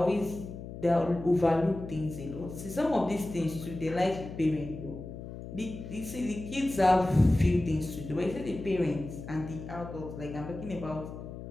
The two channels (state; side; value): noise; left; hum, 11 dB below the sound